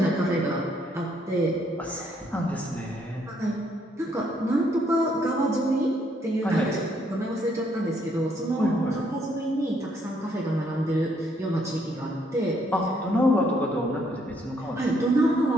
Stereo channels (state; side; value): normal; both; correlation 0.70